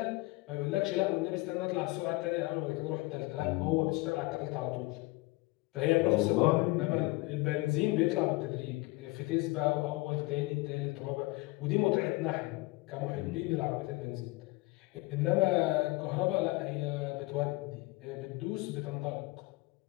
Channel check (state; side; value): quieter; right; 22.3 dB